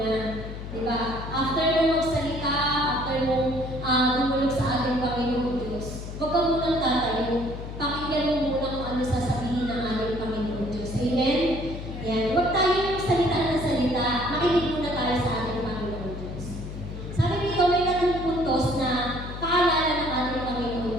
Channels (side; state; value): left; noise; hum, 9 dB below the sound